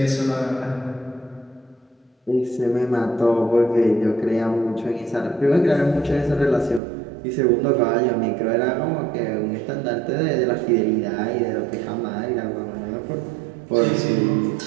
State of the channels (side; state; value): left; drops out; at 6.8 s